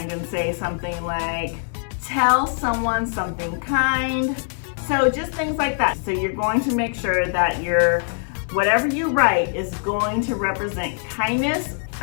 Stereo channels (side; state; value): right; silent; 64 dB below the other